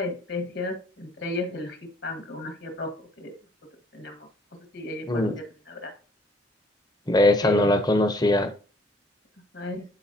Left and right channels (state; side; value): normal; both; correlation 0.59